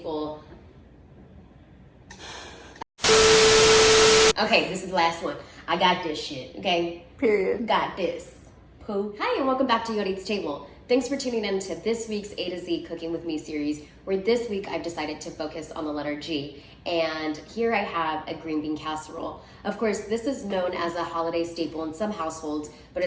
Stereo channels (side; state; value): both; identical; correlation 1.00